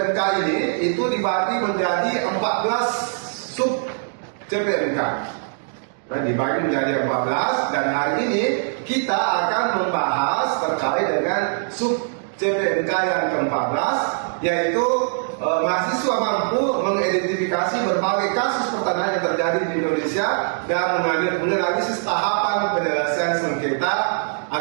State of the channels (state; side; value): silent; left; digital silence